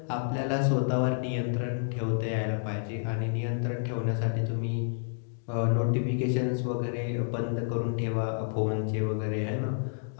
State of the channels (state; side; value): silent; right; digital silence